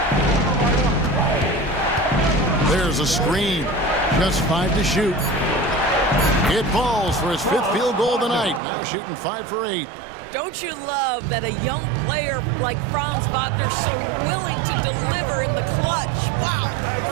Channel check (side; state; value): left; drops out; at 8.6 s